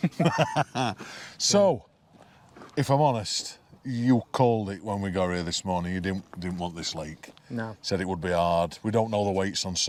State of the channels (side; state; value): both; identical; correlation 1.00